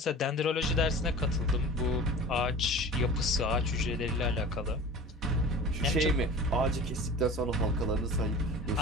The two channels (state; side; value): normal; both; correlation 0.38